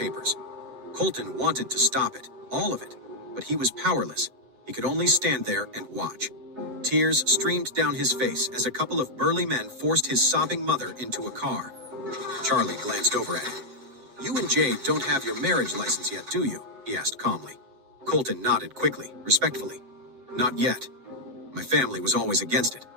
Colton wanted to stop it, all of it, but he was powerless. He could only stand there and watch. Tears streamed down his face as a couple of burly men forced his sobbing mother into a car. Charlie glanced over at him. You and Jade don't have your marriage license yet, do you? He asked calmly. Colton nodded quickly, respectfully. Not yet. My family was always against it.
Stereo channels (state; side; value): late; left; 7.9 ms